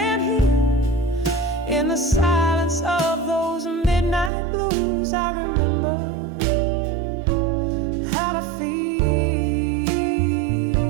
heal. In the silence of those midnight blues, I remember how to feel.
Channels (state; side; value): drops out; left; at 4.3 s